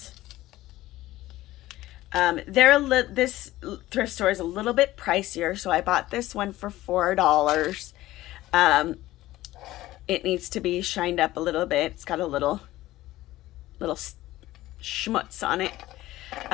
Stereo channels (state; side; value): quieter; right; 16.3 dB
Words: This thrift store is a little bit pricier, so I bought this one for $4. It needs to be shined up a little bit. It's got a little schmutz on it.